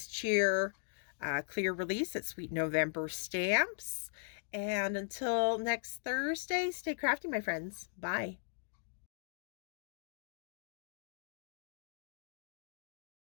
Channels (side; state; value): right; silent; digital silence